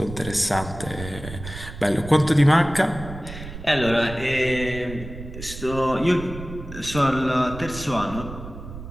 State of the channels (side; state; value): right; noise; rumble, 12 dB below the sound